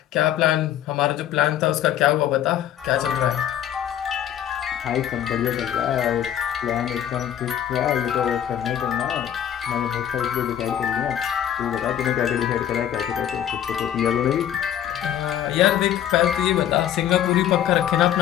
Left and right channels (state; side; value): quieter; right; 10.5 dB